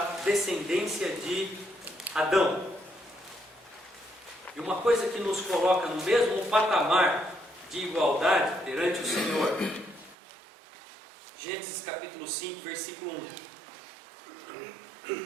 descendência de Adão. E uma coisa que nos coloca no mesmo patamar de igualdade perante o Senhor. Gênesis capítulo 5, versículo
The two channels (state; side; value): drops out; left; at 10.2 s